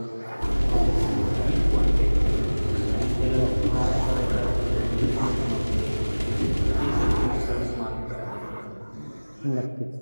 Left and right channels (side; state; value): both; inverted; correlation -1.00